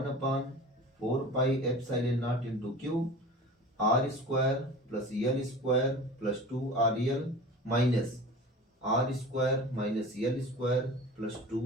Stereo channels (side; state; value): both; normal; correlation 0.37